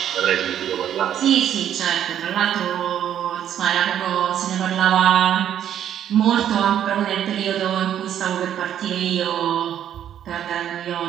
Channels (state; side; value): quieter; left; 10.2 dB